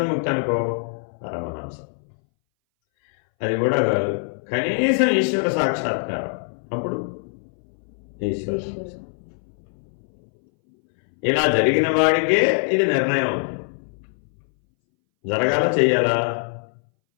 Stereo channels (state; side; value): silent; right; 61 dB below the other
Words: అనుకో, పరమహంస. అది కూడా కాదు, కనీసం ఈశ్వర సాక్షాత్కారం, అప్పుడు ఈశ్వర హంస. ఇలా జరిగిన వాడికే ఇది నిర్ణయం అవుతుంది. జరగాల చెయ్యాలా?